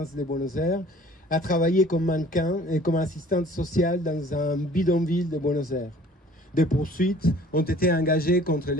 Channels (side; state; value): both; normal; correlation 0.51